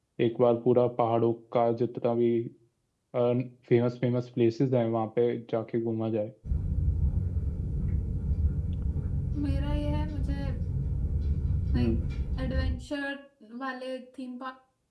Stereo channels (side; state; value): both; identical; correlation 1.00